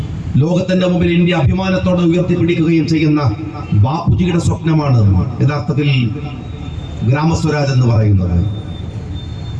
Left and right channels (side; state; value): both; identical; correlation 1.00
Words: ലോകത്തിന്റെ മുമ്പിൽ ഇന്ത്യ അഭിമാനത്തോടെ ഉയർത്തിപ്പിടിക്കുകയും ചെയ്യുന്ന ബാപ്പുജിയുടെ സ്വപ്നമാണ് യഥാർത്ഥത്തിൽ ഗ്രാമസ്വരാജ് എന്ന് പറയുന്നത്.